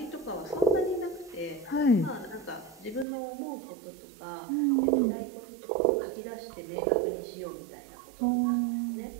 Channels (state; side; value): drops out; left; at 3.1 s